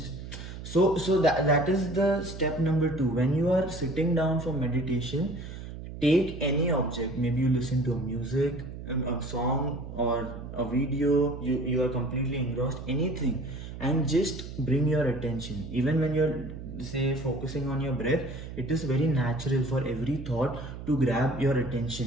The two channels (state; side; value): noise; right; hum, 10 dB below the sound